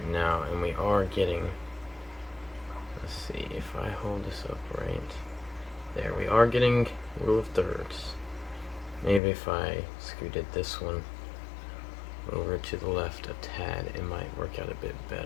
now, and we are getting, let's see if I hold this up right there, we are getting rule of thirds. Maybe if I scooted this one over to the left a tad, it might work work out a bit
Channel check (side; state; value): right; drops out; at 9.2 s